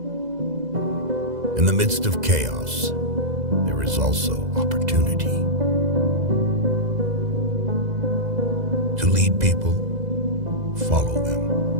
In the midst of chaos, there is also opportunity. To lead people, follow them.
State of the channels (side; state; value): left; late; 2.0 ms